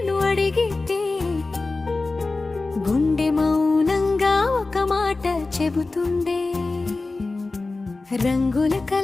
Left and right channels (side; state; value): right; quieter; 3.5 dB